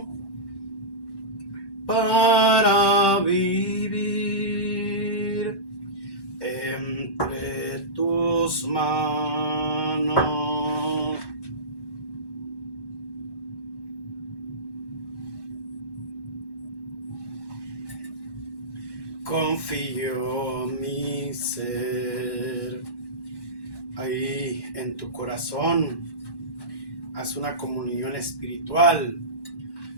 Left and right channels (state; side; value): late; right; 1.1 ms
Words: para vivir entre tus manos. Confío mi ser. Ahí en tu corazón haz una comunión espiritual,